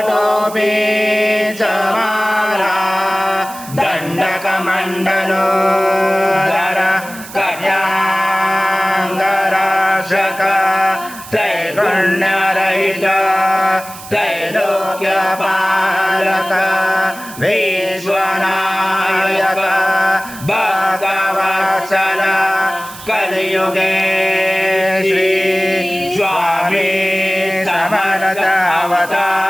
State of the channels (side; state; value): right; noise; hiss, 15 dB below the sound